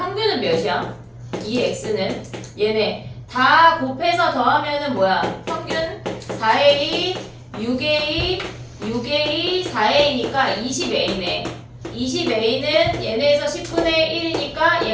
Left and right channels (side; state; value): both; identical; correlation 1.00